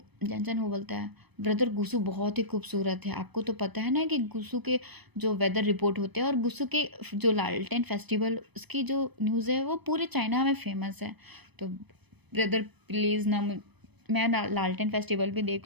जैनसन वो बोलता है ब्रदर गुसू बहुत ही खूबसूरत है, आपको तो पता है ना कि गुसू के जो वेदर रिपोर्ट होते हैं और गुसू के जो लालटेन फेस्टिवल उसकी जो न्यूज़ है वो पूरे चाइना में फेमस है। तो ब्रदर प्लीज़ ना मैं लालटेन फेस्टिवल भी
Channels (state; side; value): late; left; 0.99 ms